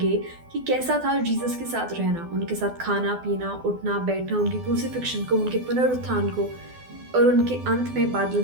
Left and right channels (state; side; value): late; left; 12 ms